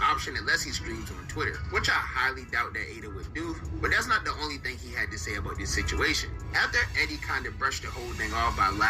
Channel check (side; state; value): both; identical; correlation 1.00